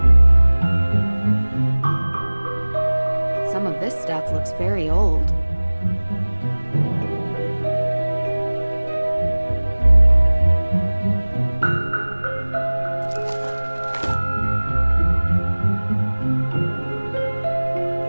Some of this stuff looks very old.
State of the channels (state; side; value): inverted; both; correlation -1.00